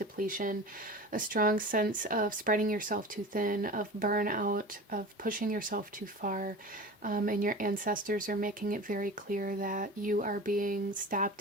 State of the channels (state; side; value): normal; both; correlation 0.34